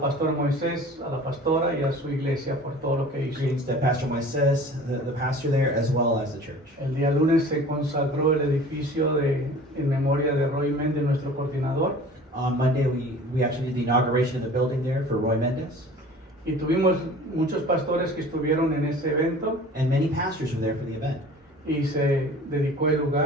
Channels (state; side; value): normal; both; correlation 0.44